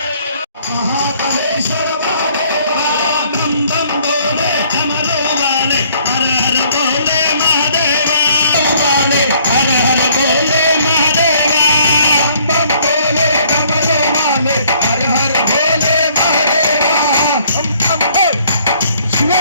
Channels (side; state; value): both; inverted; correlation -0.62